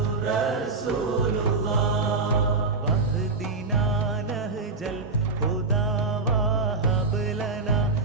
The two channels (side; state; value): left; quieter; 3.8 dB